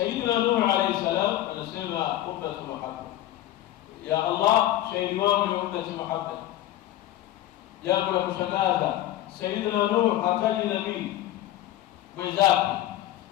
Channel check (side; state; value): right; quieter; 14.0 dB